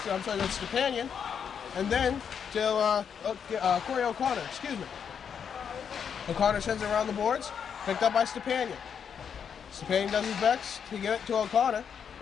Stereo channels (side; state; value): right; quieter; 7.4 dB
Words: And then to Corey O'Connor, excuse me. O'Connor sends it around the boards, picked up by Stepanian. Stepanian does his best to get it to O'Connor.